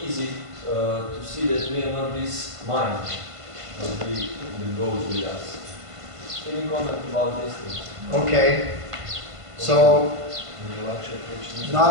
easy to see that we are not this mind that goes with us. Can you comment about this thing? Okay. So,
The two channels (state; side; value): late; left; 1.5 ms